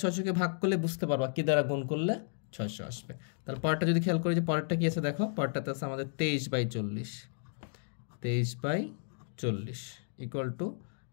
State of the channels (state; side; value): silent; right; digital silence